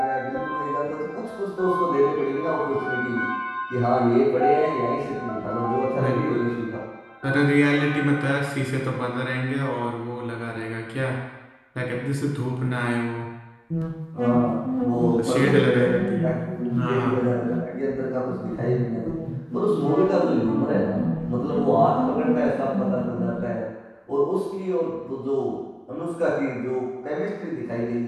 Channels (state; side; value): identical; both; correlation 1.00